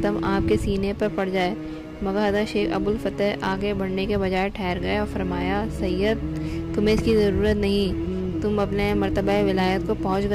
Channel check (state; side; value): identical; both; correlation 1.00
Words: آپ کے سینے پر پڑ جائے، مگر حضرت شیخ ابوالفتح آگے بڑھنے کے بجائے ٹھہر گئے اور فرمایا، سید تمہیں اس کی ضرورت نہیں، تم اپنے مرتبہ ولایت کو پہنچ